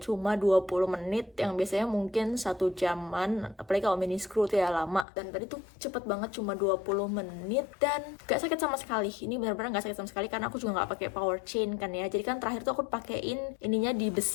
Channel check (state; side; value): drops out; right; at 5.1 s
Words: cuma 20 menit yang biasanya mungkin 1 jaman, apalagi kalau mini screw tuh ya lama. Dan tadi tuh cepet banget, cuma 20 menit dan gak sakit sama sekali. Ini benar-benar gak sakit sama sekali karena aku juga gak pakai power chain kan ya. Jadi kan terakhir tuh aku pakein ininya